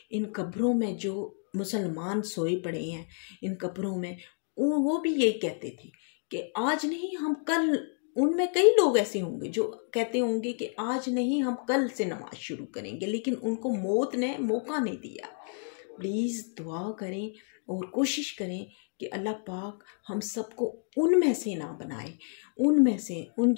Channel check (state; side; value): silent; right; 58 dB below the other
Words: इन कब्रों में जो मुसलमान सोए पड़े हैं, इन कब्रों में वो भी यही कहते थे कि आज नहीं हम कल। उनमें कई लोग ऐसे होंगे जो कहते होंगे कि आज नहीं हम कल से नमाज शुरू करेंगे, लेकिन उनको मौत ने मौका नहीं दिया। प्लीज़ दुआ करें और कोशिश करें कि अल्लाह पाक हम सबको उनमें से ना बनाए, उनमें से उन